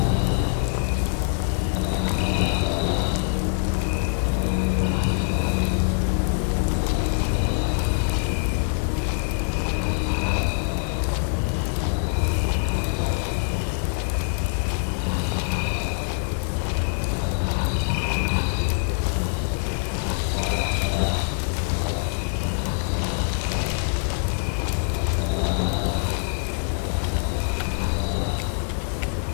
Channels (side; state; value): right; silent; 62 dB below the other